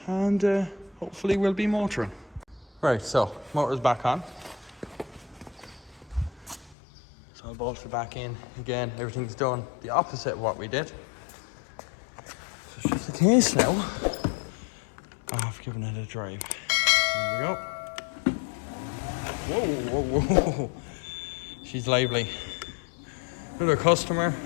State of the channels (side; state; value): right; drops out; at 6.8 s